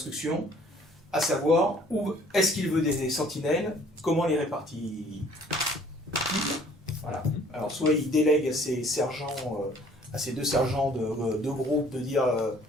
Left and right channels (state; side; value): normal; both; correlation 0.55